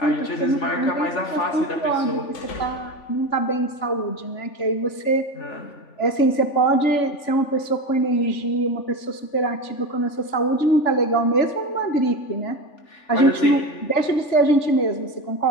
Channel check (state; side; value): late; right; 3.5 ms